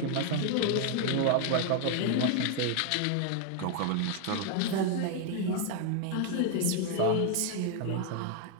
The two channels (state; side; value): different; both; correlation 0.00